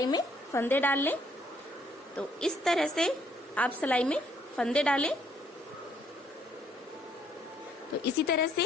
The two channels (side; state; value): both; normal; correlation 0.66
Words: में फंदे डाल लें। तो इस तरह से आप सिलाई में फंदे डालें। तो इसी तरह